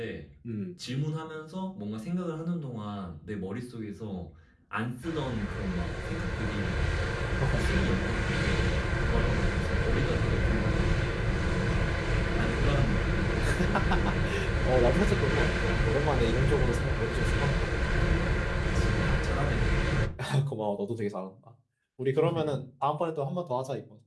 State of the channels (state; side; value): identical; both; correlation 1.00